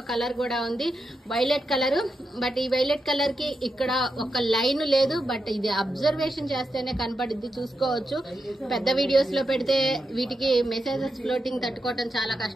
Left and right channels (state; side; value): normal; both; correlation 0.86